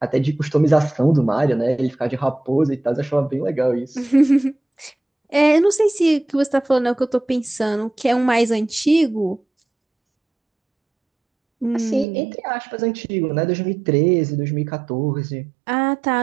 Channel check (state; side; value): drops out; left; at 12.1 s